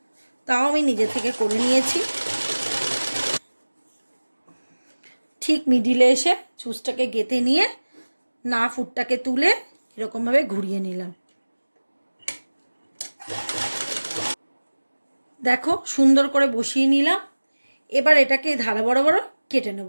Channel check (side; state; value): both; inverted; correlation -1.00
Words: তাও আমি নিজে থেকে করে নিয়েছি। ঠিক মিডিলে এসে চুজটাকে গেঁথে নিয়ে না ফুটটাকে তুলে এরকমভাবে ঘুরিয়ে নিলাম। দেখো সুন্দর করে বসিয়ে নিলাম। এবার এটাকে ধারা বরাবর কেটে